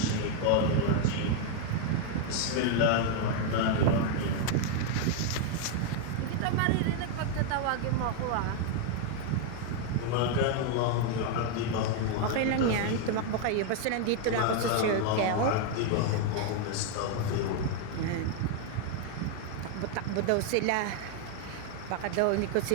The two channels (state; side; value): different; both; correlation 0.01